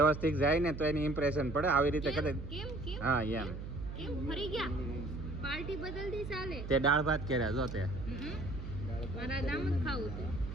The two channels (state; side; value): noise; right; hum, 8 dB below the sound